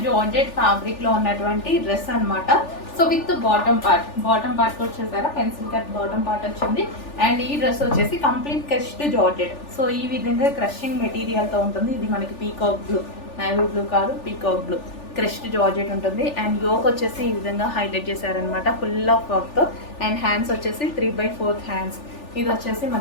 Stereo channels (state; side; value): late; right; 3.4 ms